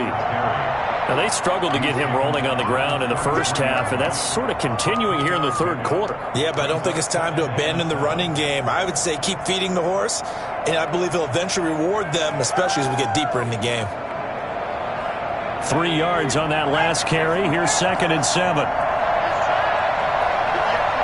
they struggled to get him rolling on the ground in the first half, and that's sort of continuing here in the 3rd quarter. Yeah, but I don't think it's time to abandon the running game. I would say keep feeding the horse, and I believe he'll eventually reward them, especially as we get deeper in the game. 3 yards on that last carry. Here's 2nd and 7.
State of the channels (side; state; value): both; identical; correlation 1.00